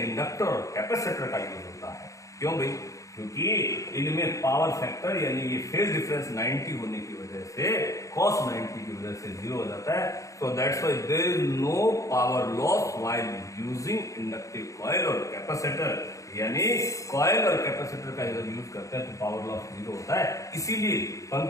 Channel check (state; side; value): late; right; 0.15 ms